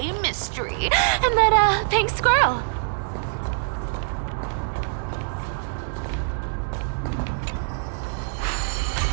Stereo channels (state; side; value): silent; left; 62 dB below the other